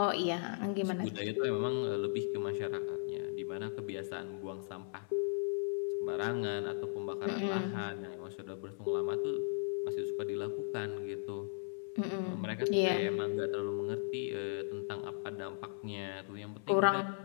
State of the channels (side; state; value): right; silent; 53 dB below the other